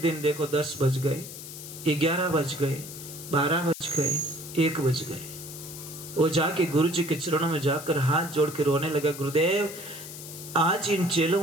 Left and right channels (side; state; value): left; noise; hiss, 12 dB below the sound